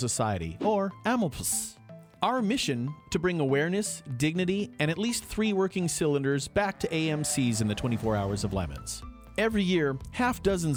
or AMLPS. Our mission, to bring awareness, dignity, and at least 3 working cylinders back to AMCs in the 24 hours of lemons. Every year, half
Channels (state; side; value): identical; both; correlation 1.00